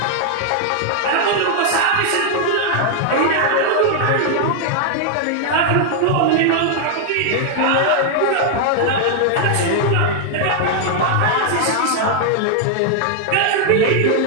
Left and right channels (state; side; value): different; both; correlation 0.00